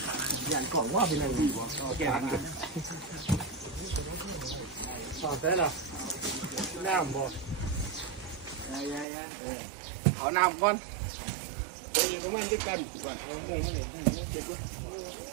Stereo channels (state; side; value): drops out; left; at 9.1 s